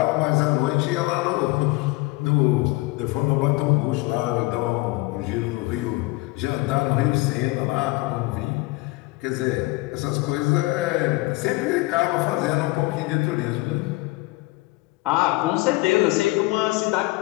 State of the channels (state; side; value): quieter; right; 21.6 dB